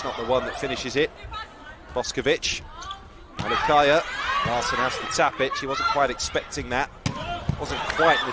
not the one that finishes it. Boskovic, Alikaya, Larson has to tap it, she wasn't quite expecting that. Wasn't quite an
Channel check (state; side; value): identical; both; correlation 1.00